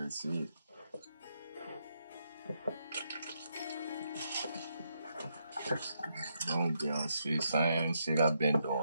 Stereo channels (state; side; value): inverted; both; correlation -0.80